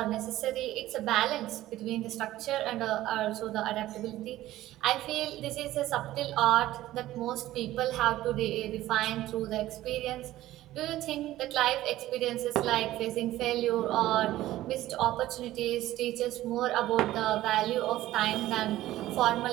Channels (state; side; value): quieter; left; 15.1 dB